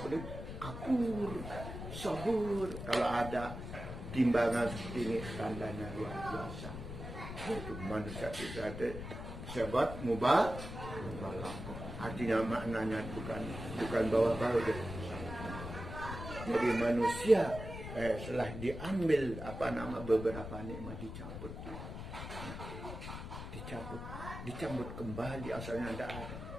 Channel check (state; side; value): noise; left; rumble, 8 dB below the sound